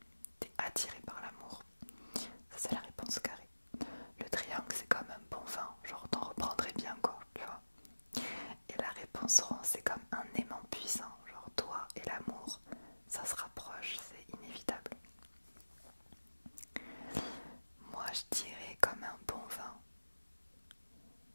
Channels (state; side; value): inverted; both; correlation -1.00